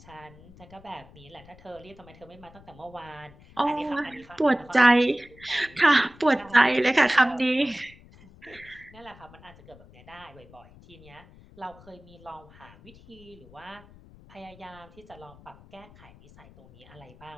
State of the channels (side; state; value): left; noise; rumble, 23 dB below the sound